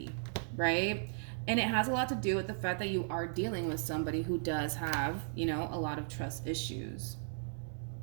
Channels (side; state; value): left; silent; 54 dB below the other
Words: right? And it has a lot to do with the fact that you are dealing with somebody who does have, you know, a lot of trust issues.